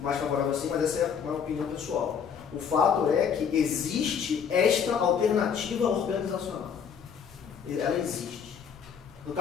mais favorável assim, mas essa é uma opinião pessoal. O fato é que existe esta alternativa organizacional. Ela existe. No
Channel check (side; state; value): right; quieter; 7.1 dB